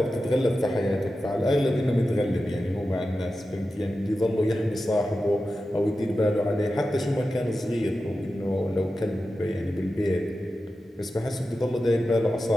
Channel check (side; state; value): both; normal; correlation 0.92